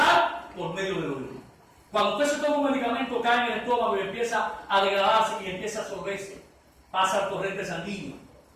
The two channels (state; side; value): identical; both; correlation 1.00